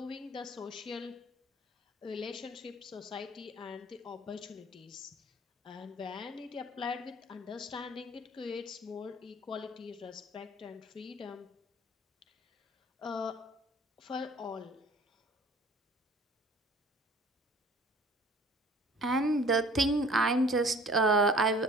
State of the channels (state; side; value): normal; both; correlation 0.51